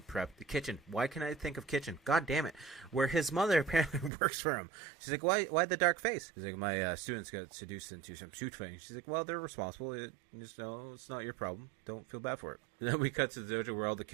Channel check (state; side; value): drops out; left; at 4.1 s